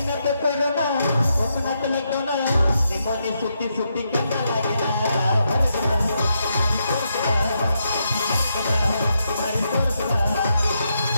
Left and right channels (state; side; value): inverted; both; correlation -0.81